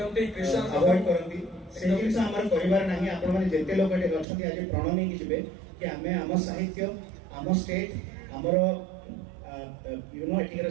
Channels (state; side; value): drops out; left; at 4.2 s